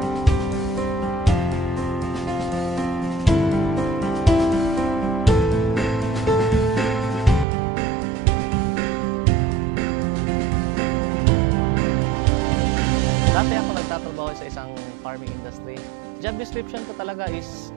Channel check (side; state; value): left; drops out; at 7.5 s